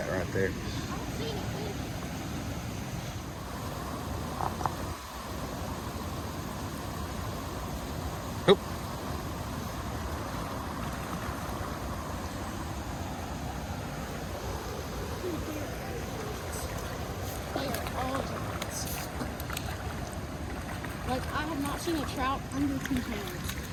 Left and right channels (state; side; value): identical; both; correlation 1.00